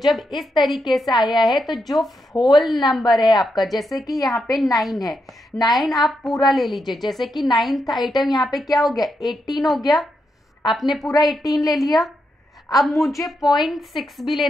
इस तरीके से आया है तो जो होल नंबर है आपका, जैसे कि यहाँ पे 9 है, 9 आप पूरा ले लीजिए। जैसे कि 9th आइटम यहाँ पे क्या हो गया 18 हो गया, आपने पूरा 18 ले लिया। अब मुझे 0.6 भी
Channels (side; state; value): both; normal; correlation 0.83